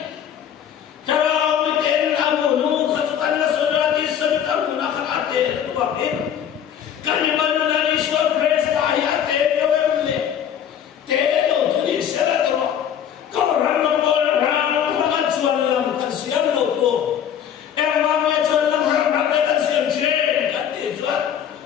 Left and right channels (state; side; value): quieter; right; 9.2 dB